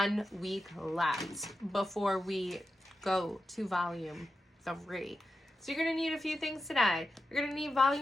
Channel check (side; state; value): both; normal; correlation 0.90